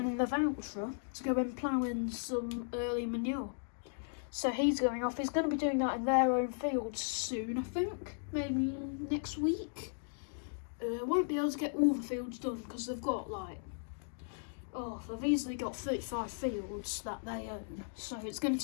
in the voucher to go and plough in some early manure. So he's going off. He's going to be doing that in their own fields soon, I think. Maybe next week. Won't be able to get all the fields done because they've got they've easily got 35 fields that they own, so it's going to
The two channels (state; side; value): silent; right; digital silence